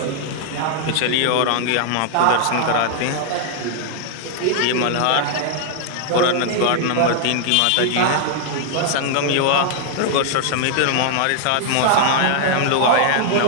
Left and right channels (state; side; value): different; both; correlation 0.00